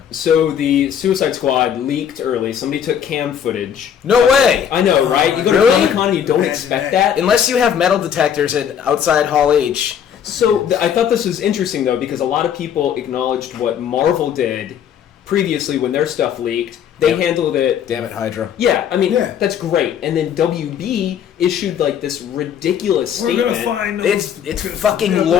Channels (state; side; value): quieter; right; 8.7 dB